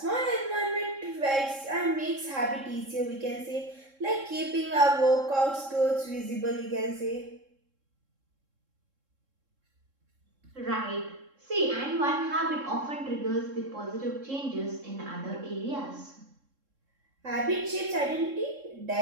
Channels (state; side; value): late; left; 3.7 ms